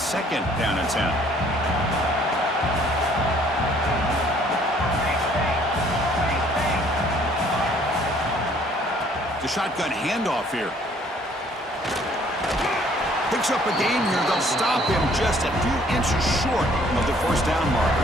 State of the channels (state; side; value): normal; both; correlation 0.60